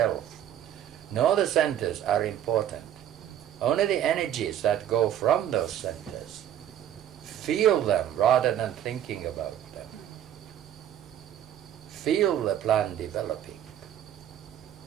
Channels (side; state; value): left; quieter; 10.8 dB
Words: nor the centers are important. Only the energies that go from those centers. Feel them rather than thinking about them. Feel the plan developing.